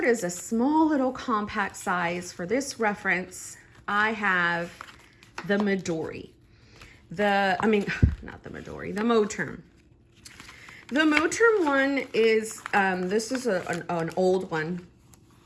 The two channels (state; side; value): identical; both; correlation 1.00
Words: is a small little compact size. For this reference, I have the Midori. The Moterm. The Moterm one is, this is an old one,